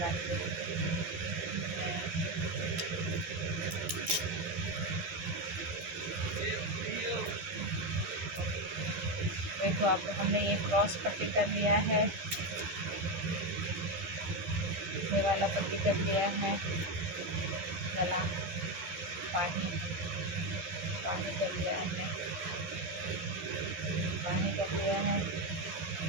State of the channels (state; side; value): late; left; 12 ms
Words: हैं। देखो अब हमने ये क्रॉस पट्टी कर लिया है, ये वाला पट्टी कर लिया है, गला पानी पानी कर लिया है, पानी कर लिया है।